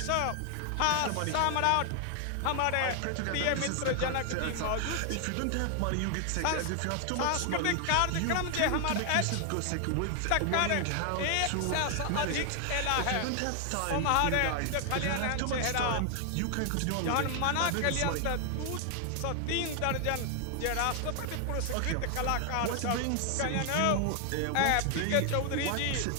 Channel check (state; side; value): different; both; correlation 0.00